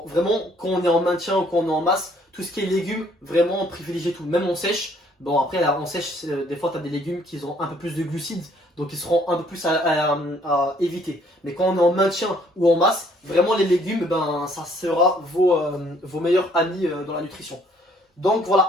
vraiment, quand on est en maintien ou quand on est en masse, tout ce qui est légumes, vraiment privilégiez tout, même en sèche. Bon après là, en sèche, des fois tu as des légumes qui ont un peu plus de glucides, donc ils seront un peu plus à éviter. Mais quand on est en maintien ou en masse, vraiment les légumes, ben, ça sera vos meilleurs amis dans la nutrition. Donc voilà,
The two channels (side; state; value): both; normal; correlation 0.63